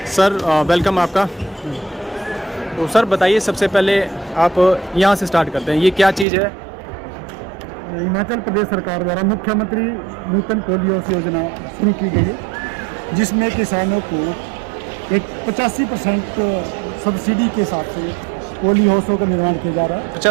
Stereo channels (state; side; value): drops out; left; at 6.2 s